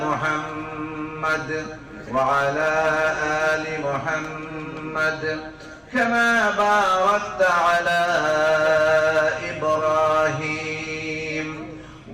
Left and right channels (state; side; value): identical; both; correlation 1.00